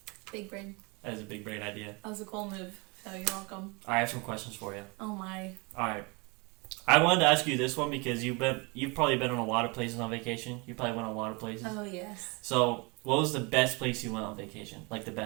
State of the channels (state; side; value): quieter; left; 28.9 dB